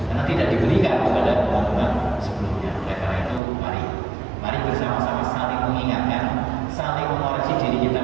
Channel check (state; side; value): drops out; left; at 3.4 s